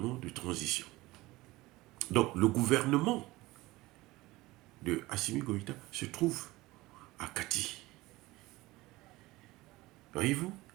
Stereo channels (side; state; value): left; quieter; 19.7 dB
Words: de transition. Donc le gouvernement de Assimi Goïta se trouve à Kati. Voyez-vous?